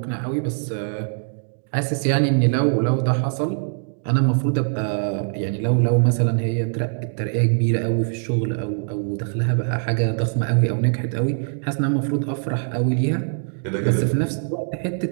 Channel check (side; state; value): left; silent; digital silence